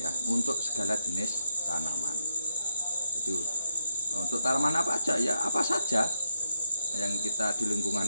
untuk segala jenis tanaman. Jadi untuk tanaman apa aja ya, apa saja yang kita di lingkungan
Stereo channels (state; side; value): inverted; both; correlation -0.78